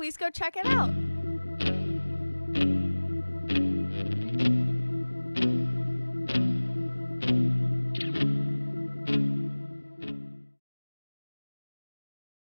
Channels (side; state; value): both; inverted; correlation -1.00